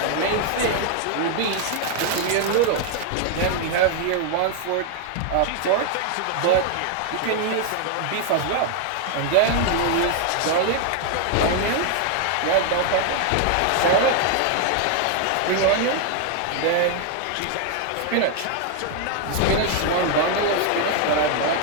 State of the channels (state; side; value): different; both; correlation 0.00